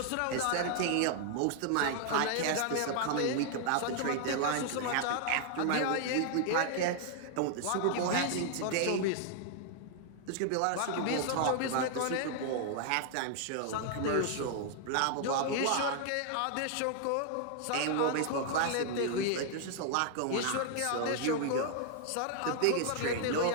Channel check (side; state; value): both; different; correlation 0.00